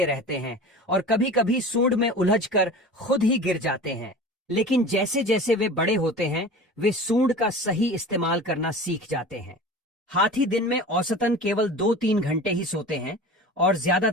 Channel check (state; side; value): normal; both; correlation 0.36